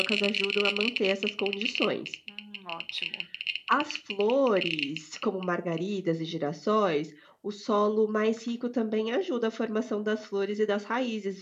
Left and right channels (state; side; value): identical; both; correlation 1.00